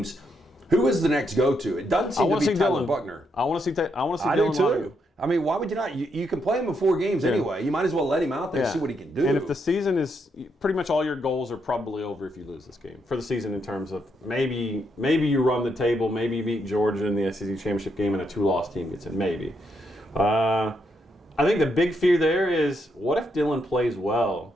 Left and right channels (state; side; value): normal; both; correlation 0.78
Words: Who is the next go-to? It doesn't seem to be Tyler Buckner. I want to see Dylan. I do too. I mean, why would you not? You can play him in 4 games anyway. You might as well let him out there and see what he can do. And if the season is pretty much all your goals are probably over if you lose this game for the season, in terms of maybe you run the table, maybe you beat Georgia in the SEC championship game and a 2-loss team gets in, maybe. I think the big fear there is, what if Dylan plays well,